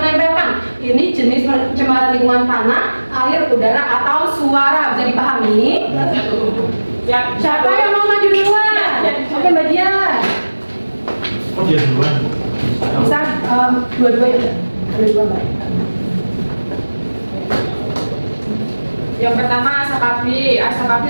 ini jenis pencemaran lingkungan tanah, air, udara, atau suara. Bisa dipahami? Siapa yang mau maju duluan? Oke, Mbak Dian. Oh, dia duluan. Bisa dua-duanya. Ada dua Mbak. Yang pertama asap api. Asap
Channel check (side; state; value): both; inverted; correlation -1.00